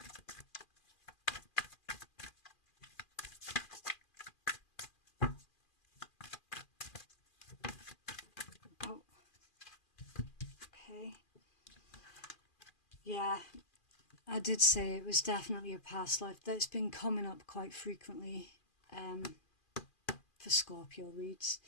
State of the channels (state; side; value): late; right; 2.4 ms